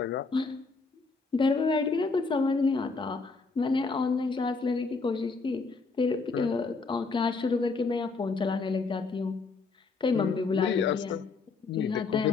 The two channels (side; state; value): right; quieter; 4.2 dB